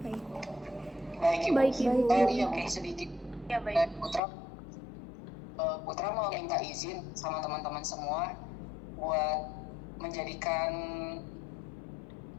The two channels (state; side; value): drops out; right; at 4.2 s